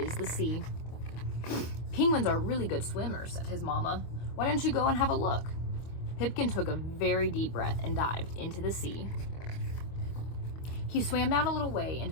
the sea? Penguins are really good swimmers, said his mama. Why don't you go and have a look? Pipkin took a very deep breath and dived into the sea. He swam down a little way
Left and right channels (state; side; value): late; right; 25 ms